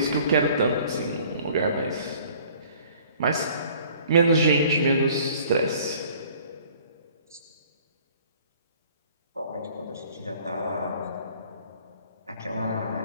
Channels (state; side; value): inverted; both; correlation -0.54